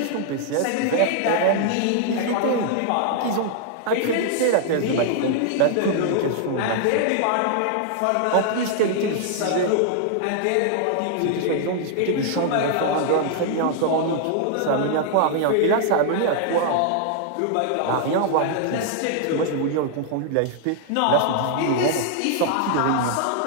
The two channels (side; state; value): both; different; correlation 0.00